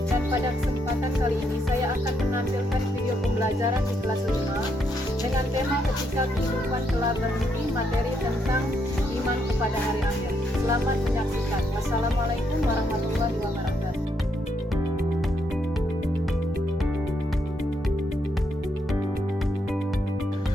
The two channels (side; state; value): both; normal; correlation 0.77